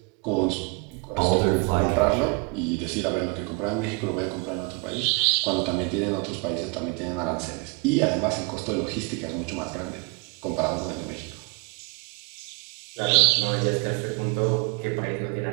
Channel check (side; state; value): left; quieter; 29.6 dB